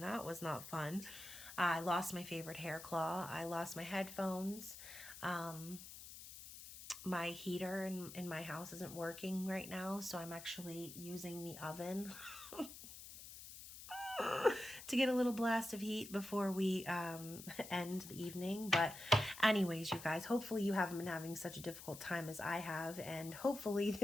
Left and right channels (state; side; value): noise; left; hiss, 13 dB below the sound